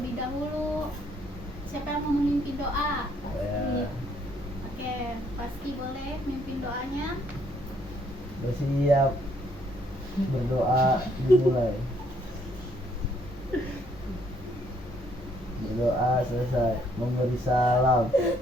dahulu. Siapa yang mau memimpin doa? Ya. Oke, pasti boleh memimpin doanya. Bersiap. Berdoa dimulai. Berdoa selesai. Memberi salam.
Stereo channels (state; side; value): normal; both; correlation 0.67